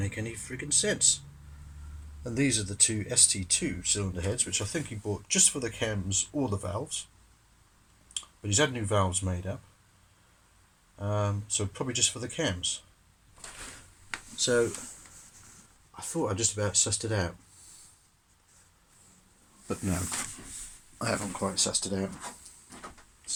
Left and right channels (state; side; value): identical; both; correlation 1.00